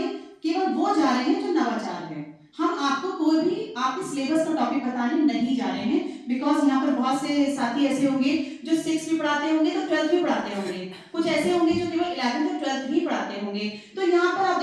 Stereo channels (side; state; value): both; identical; correlation 1.00